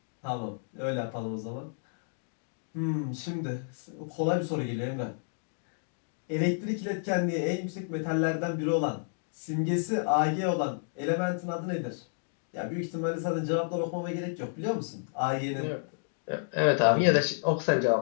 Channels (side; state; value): right; silent; digital silence